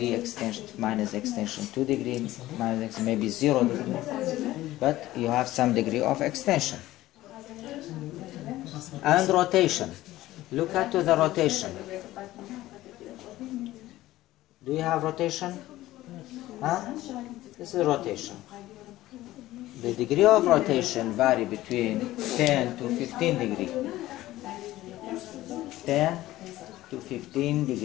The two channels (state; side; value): quieter; right; 16.0 dB